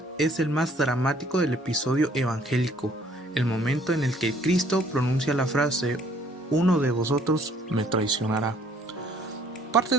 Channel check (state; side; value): normal; both; correlation 0.60